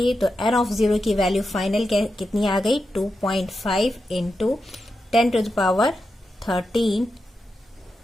तो N ऑफ 0 की वैल्यू फाइनल कितनी आ गई, 2.5 into 10 to the power 13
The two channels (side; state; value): both; normal; correlation 0.88